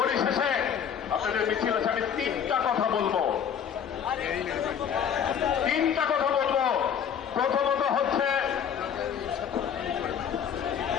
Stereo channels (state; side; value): quieter; right; 8.1 dB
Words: আপনাদের মিছিল আছে, আমি তিনটা কথা বলবো। প্রথমত হচ্ছে,